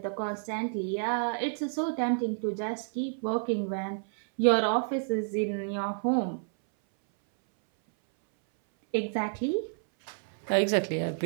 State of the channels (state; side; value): silent; left; 58 dB below the other